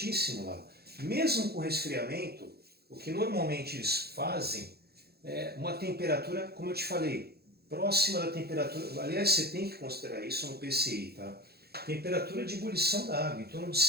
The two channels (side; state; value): left; late; 0.46 ms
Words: lá. Mesmo com resfriamento, o que normalmente eles fazem é uma temperatura, como eu te falei, próxima da temperatura. Aliás, você tem que considerar isso no PCI, tá? Temperatura de ebulição da água, em torno de